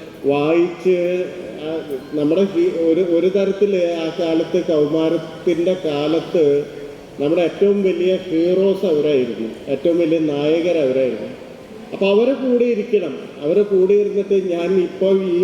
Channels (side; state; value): both; identical; correlation 1.00